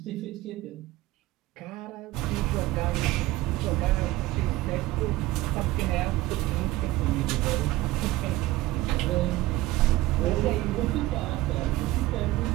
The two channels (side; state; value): left; quieter; 17.1 dB